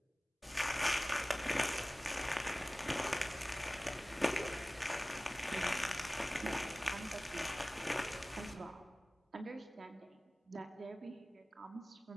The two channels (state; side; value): normal; both; correlation 0.98